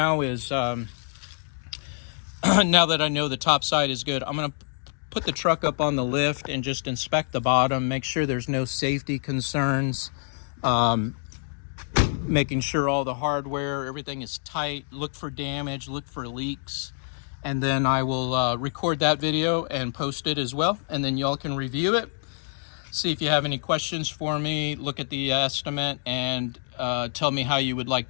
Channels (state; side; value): silent; right; digital silence